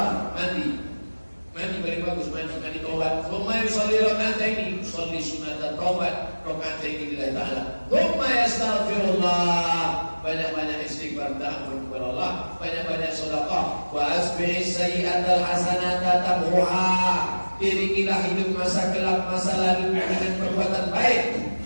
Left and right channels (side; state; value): both; inverted; correlation -1.00